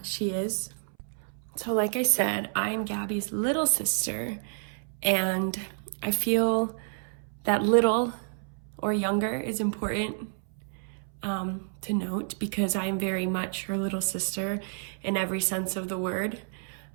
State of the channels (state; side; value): silent; left; 58 dB below the other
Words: she is. So, like I said, I'm Gabby's little sister, and I feel that little or younger is important to note because I am very much her little sister in every sense of the word.